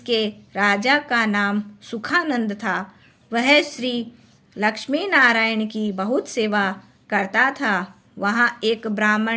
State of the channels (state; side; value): identical; both; correlation 1.00